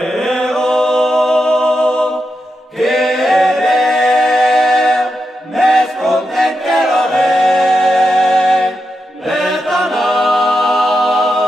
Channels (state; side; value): normal; both; correlation 0.87